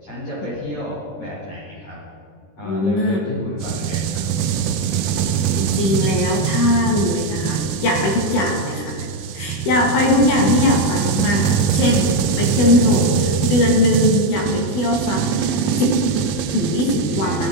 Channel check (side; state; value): right; late; 20 ms